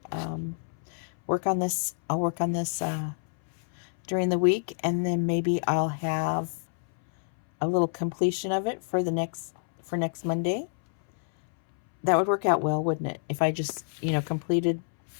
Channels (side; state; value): right; silent; 59 dB below the other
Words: work on this. I'll work on this during the week, and then maybe I'll have a little completion of it for next Monday. That would work out well, wouldn't it? If I just,